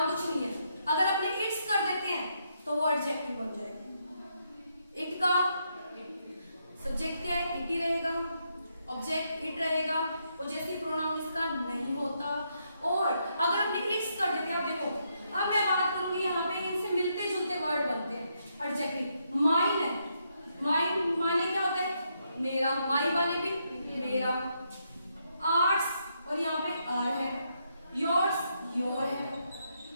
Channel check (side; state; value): both; inverted; correlation -0.78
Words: कुछ नहीं है। अगर अपने इट्स कर देते हैं तो वो एडजेक्टिव बन जाएगा। इट का सब्जेक्ट क्या है? इट ही रहेगा, ऑब्जेक्ट इट रहेगा, पोजेसिव प्रोनाउन इसका नहीं होता। और अगर अपने इट्स कर देते हैं, आप देखो अब मैं बात करूंगी यहाँ पे इनसे मिलते जुलते वर्ड बनते हैं एडजेक्टिव। माइन है, माइन माने क्या होता है? मेरा, माई वाले भी मेरा। आर्ट्स और यहाँ पे आर है, योर्स योर है,